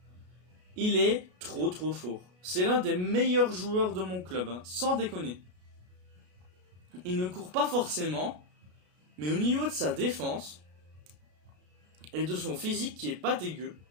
Il est trop fort. C'est l'un des meilleurs joueurs de mon club, hein, sans déconner. Il ne court pas forcément, mais au niveau de sa défense et de son physique qui est pas dégueu,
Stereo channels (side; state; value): left; late; 33 ms